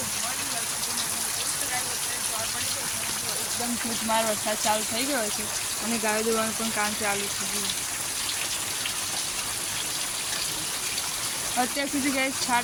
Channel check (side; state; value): both; identical; correlation 1.00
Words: એકદમ ધોધમાર વરસાદ ચાલુ થઈ ગયો છે અને ગાયો દોવાનું પણ કામ ચાલુ છે. અત્યાર સુધી ગાય